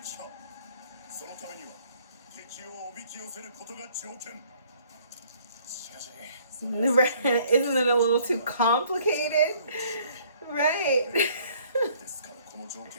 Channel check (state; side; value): inverted; both; correlation -0.60